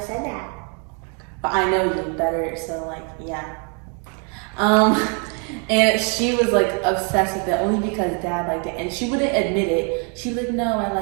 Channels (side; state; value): left; quieter; 38.1 dB